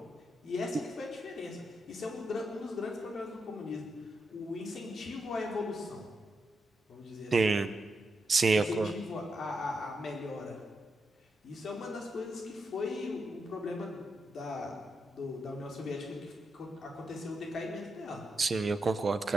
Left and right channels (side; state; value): both; normal; correlation 0.84